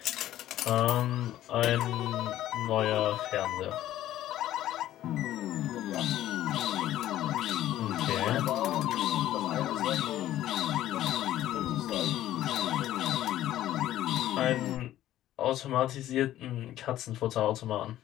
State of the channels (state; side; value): quieter; right; 13.3 dB